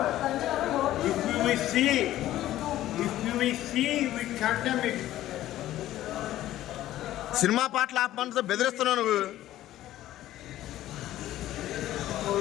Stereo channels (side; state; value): right; quieter; 13.9 dB